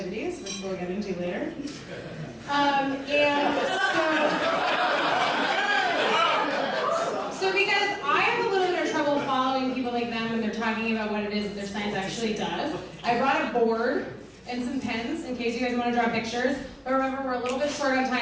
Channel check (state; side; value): identical; both; correlation 1.00